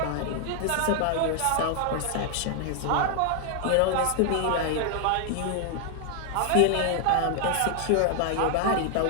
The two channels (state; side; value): different; both; correlation 0.00